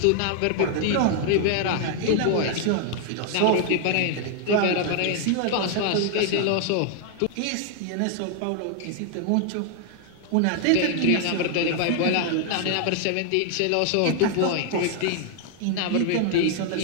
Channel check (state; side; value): different; both; correlation 0.00